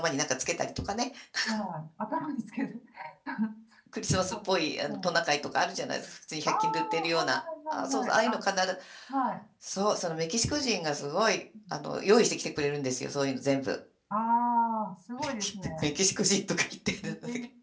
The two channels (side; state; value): both; identical; correlation 1.00